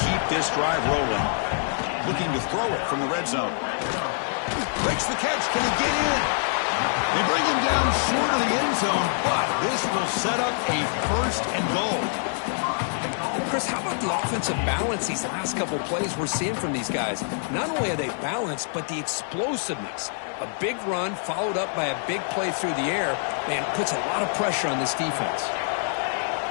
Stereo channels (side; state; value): right; silent; 61 dB below the other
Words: keep this drive rolling. Looking to throw it from the red zone. Breaks the catch. Can he get in? They bring him down short of the end zone, but this will set up a first and goal. Chris, how about the offensive balance these last couple plays we're seeing from these guys? Not only are they balanced, but the explosiveness. A big run followed up by a big play through the air, man, puts a lot of pressure on this defense.